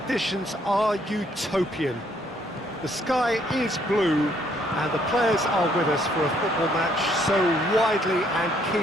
are utopian. The sky is blue, and the players are with us for a football match so widely and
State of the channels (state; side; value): normal; both; correlation 0.67